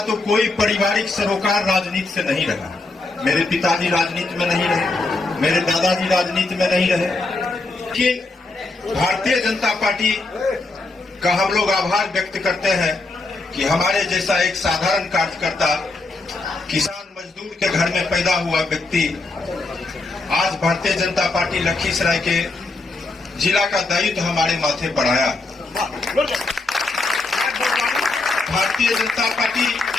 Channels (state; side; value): quieter; right; 3.3 dB